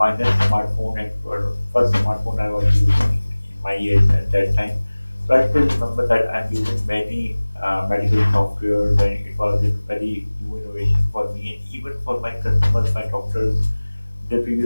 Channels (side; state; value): both; inverted; correlation -1.00